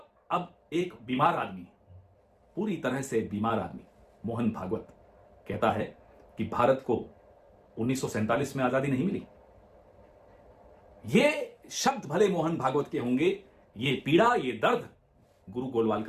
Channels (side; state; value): both; identical; correlation 1.00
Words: अब एक बीमार आदमी, पूरी तरह से बीमार आदमी, मोहन भागवत कहता है कि भारत को 1947 में आजादी नहीं मिली। ये शब्द भले मोहन भागवत के होंगे, ये पीड़ा, ये दर्द गुरु